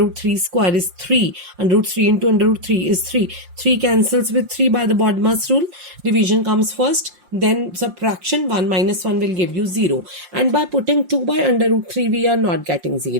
root 3 square is 3. Under root 3 into under root 3 is 3. 3 cancels with 3 by the BODMAS rule. Division comes first. Then subtraction, 1 minus 1 will give you 0. And by putting 2 by under root 3, we are not getting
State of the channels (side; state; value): left; late; 5.7 ms